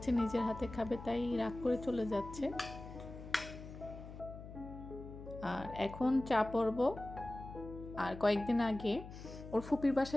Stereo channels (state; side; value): noise; left; hum, 13 dB below the sound